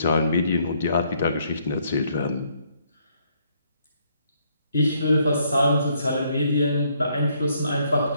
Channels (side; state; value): both; inverted; correlation -0.70